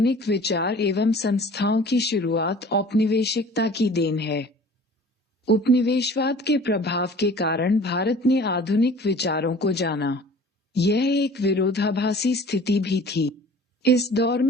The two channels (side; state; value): both; normal; correlation 0.46